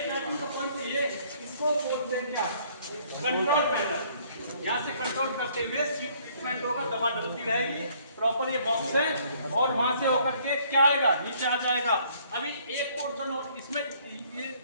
स्टार्टिंग का पॉइंट ये, इसको बोलते हैं क्या? Control panel. यहाँ से कंट्रोल करते हुए सीड ट्रीटमेंट होगा, दवा डलती रहेगी, प्रॉपर ये बॉक्स है और वहां से होकर के क्या आएगा, नीचे आ जाएगा। अभी एक पोर्शन और इसमें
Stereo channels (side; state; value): both; inverted; correlation -0.62